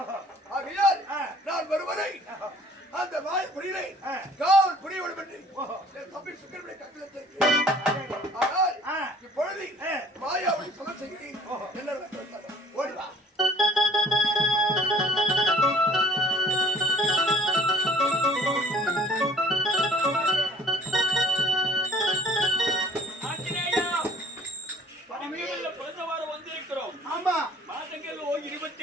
ஆகையால் நான் வருவதை அந்த மாய புரியலை காவல் புரிய வேண்டும் என்று என் தம்பி சுக்கரனுடைய கட்டளத்திற்கு. ஆனால் இப்பொழுது மாயாவை சொல்ல செய்கிறேன். என்ன ஓடிவா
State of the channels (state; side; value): normal; both; correlation 0.54